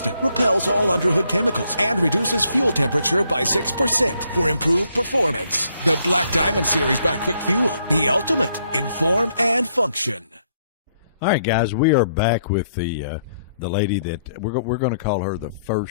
repels all underhood chemicals, and reduces fuel temperature by 6% for improved performance. The Black Diamond series by Quick Fuel, the ultimate in form and function. All right, guys, we are back with the lady that we're going to call her the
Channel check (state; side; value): inverted; both; correlation -0.72